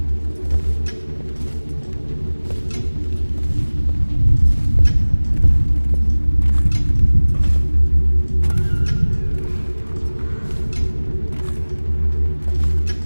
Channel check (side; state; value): both; inverted; correlation -1.00